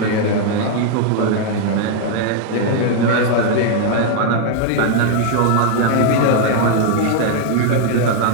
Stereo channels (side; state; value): both; different; correlation 0.00